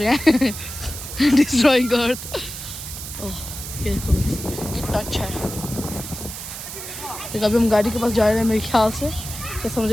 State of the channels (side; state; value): right; noise; hiss, 9 dB below the sound